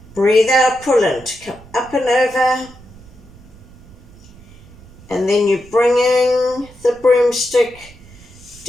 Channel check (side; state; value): right; noise; rumble, 22 dB below the sound